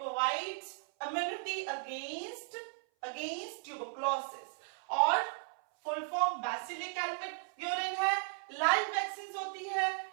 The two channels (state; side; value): silent; left; 54 dB below the other